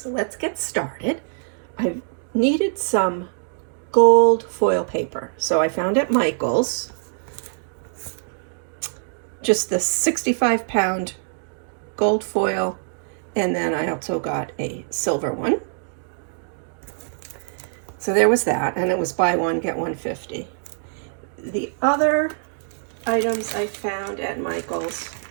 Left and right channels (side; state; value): left; silent; digital silence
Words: let's get started. I needed some gold foil paper. So I found at Michael's just the 65-pound gold foil, and then I also got a silver one. So there was that, and it was buy one, get one 50. The other items I found at Michael's